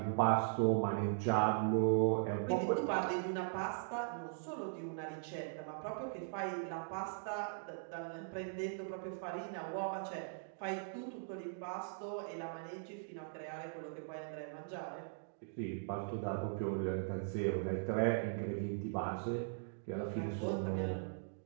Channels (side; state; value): left; silent; digital silence